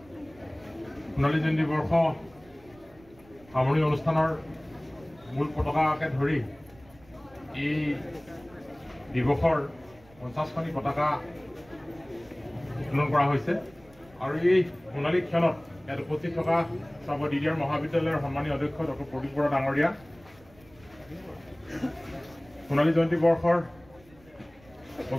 সোণালী জয়ন্তী বৰ্ষ সামৰণি অনুষ্ঠানৰ মূল পতাকাকে ধৰি এই দিৱসৰ 50খনি পতাকা উত্তোলন কৰা হৈছে আৰু এই সোণালী ক্ষণত ইয়াত উপস্থিত থকা চাবুৱা DDR মহাবিদ্যালয়ৰ সন্মানীয় অধ্যক্ষ ডক্টৰ প্ৰদীপ বৰা ডাঙৰীয়া সোণালী জয়ন্তী বৰ্ষৰ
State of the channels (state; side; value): noise; right; rumble, 26 dB below the sound